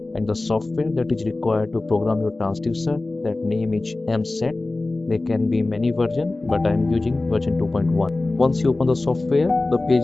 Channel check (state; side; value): quieter; right; 3.1 dB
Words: and the software that is required to program your transducer. That name is MSET. There can be many versions, but I am using version 2.1. Once you open the software, the page